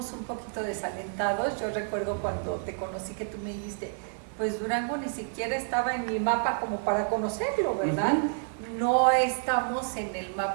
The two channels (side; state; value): left; silent; 58 dB below the other